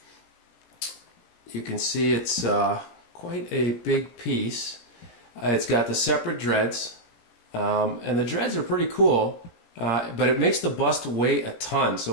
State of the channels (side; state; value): right; late; 17 ms